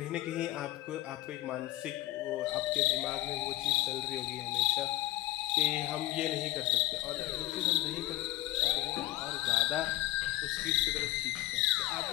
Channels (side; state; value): right; quieter; 16.8 dB